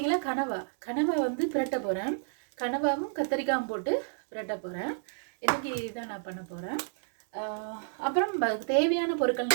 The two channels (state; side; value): silent; left; digital silence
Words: கனவா பிரட்ட போறேன். கனவாவும் கத்திரிக்காயும் போட்டு பிரட்ட போறேன். இன்னைக்கு இதான் நான் பண்ண போறேன். அப்புறம் தேவையான பொருட்கள்